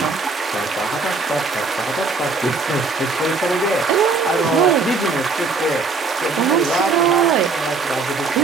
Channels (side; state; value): left; quieter; 4.2 dB